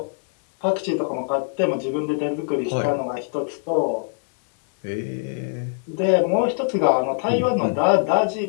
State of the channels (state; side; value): silent; right; 61 dB below the other